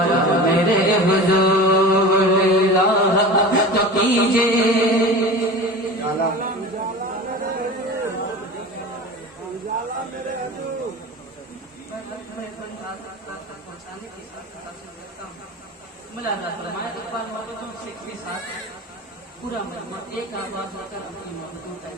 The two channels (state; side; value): normal; both; correlation 0.33